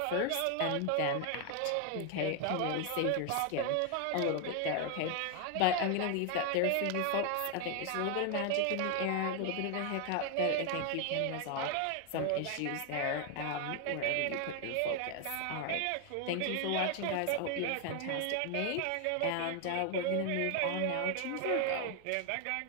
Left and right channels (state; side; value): different; both; correlation 0.00